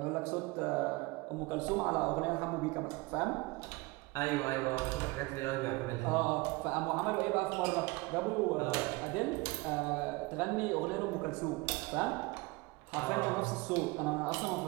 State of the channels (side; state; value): left; quieter; 24.3 dB